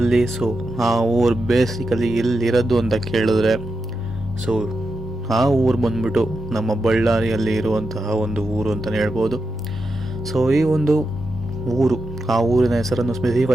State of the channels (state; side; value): normal; both; correlation 0.87